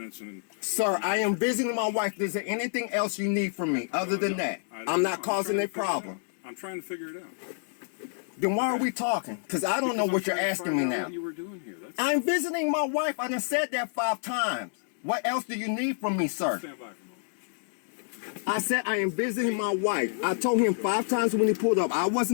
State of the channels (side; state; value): right; silent; digital silence